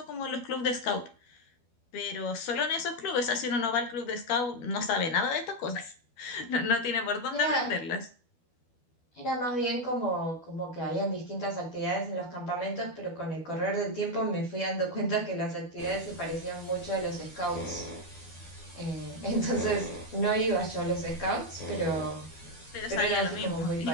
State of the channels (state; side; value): late; right; 12 ms